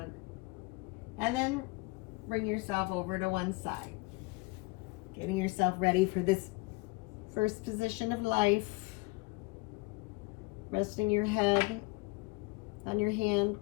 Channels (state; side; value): quieter; right; 25.5 dB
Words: And then bring yourself over to one side. Getting yourself ready for this first position of life. Resting your head on your hand